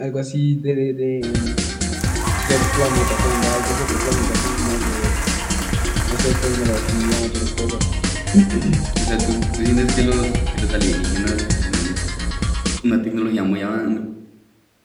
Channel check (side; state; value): both; identical; correlation 1.00